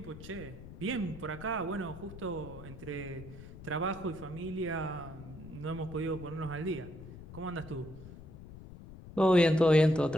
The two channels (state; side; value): noise; left; rumble, 15 dB below the sound